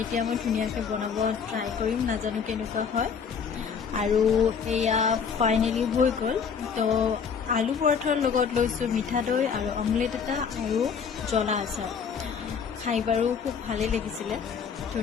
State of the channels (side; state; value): right; quieter; 6.5 dB